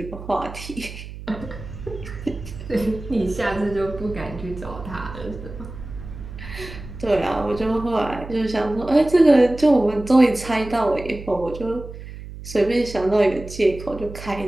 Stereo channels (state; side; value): noise; right; hum, 12 dB below the sound